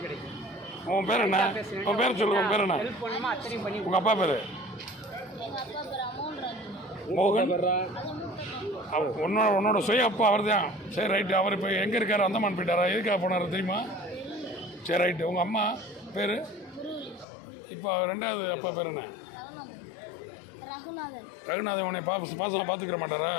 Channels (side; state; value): right; drops out; at 17.2 s